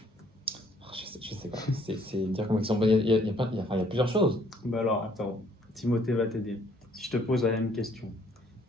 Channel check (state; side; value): normal; both; correlation 0.63